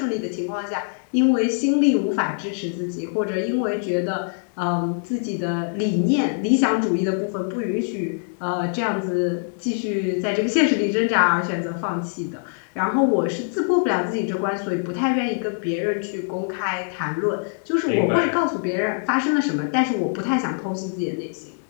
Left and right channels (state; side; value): silent; right; digital silence